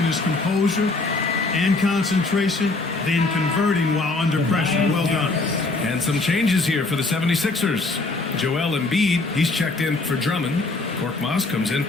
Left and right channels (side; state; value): right; quieter; 3.3 dB